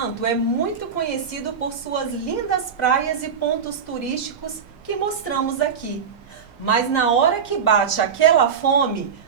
é muito conhecido por suas lindas praias e pontos turísticos que mostramos aqui. Mas na hora que bate aquela fome,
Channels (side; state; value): left; quieter; 6.8 dB